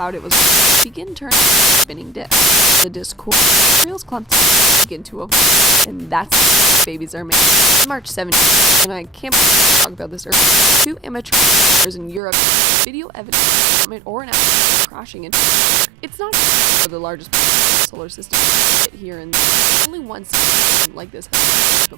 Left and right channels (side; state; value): left; drops out; at 12.2 s